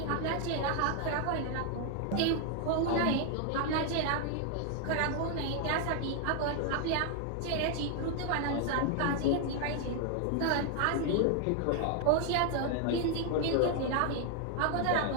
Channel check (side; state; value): both; different; correlation 0.00